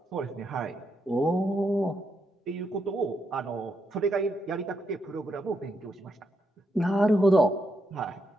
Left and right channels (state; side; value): normal; both; correlation 0.81